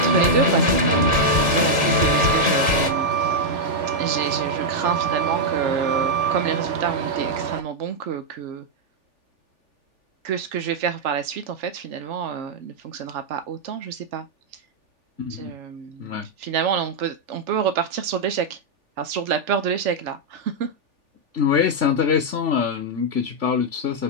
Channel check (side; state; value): left; late; 3.4 ms